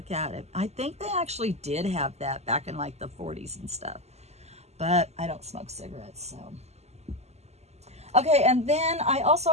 at it. I think they actually did have that back in like the 40s and stuff. But I don't smoke cigarettes, so. Okay, and then I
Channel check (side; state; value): left; late; 0.31 ms